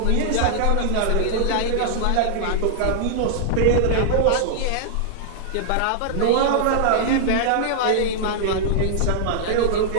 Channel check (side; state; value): both; different; correlation -0.01